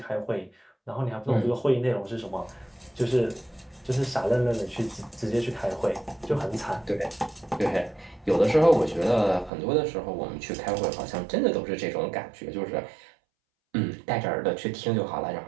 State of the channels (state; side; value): drops out; left; at 9.5 s